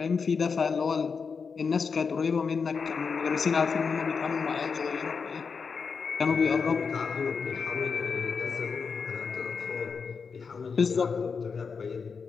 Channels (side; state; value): right; quieter; 5.4 dB